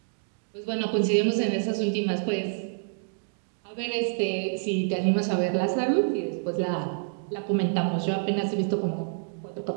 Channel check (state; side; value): silent; left; digital silence